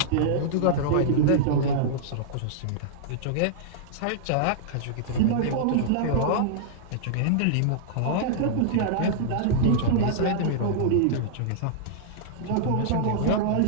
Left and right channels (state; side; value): different; both; correlation -0.02